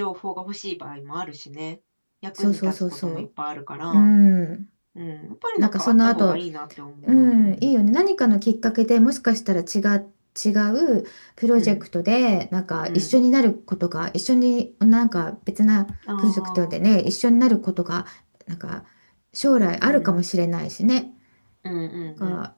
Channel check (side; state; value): both; inverted; correlation -1.00